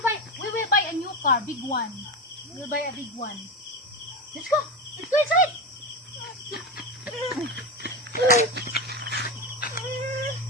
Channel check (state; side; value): normal; both; correlation 0.18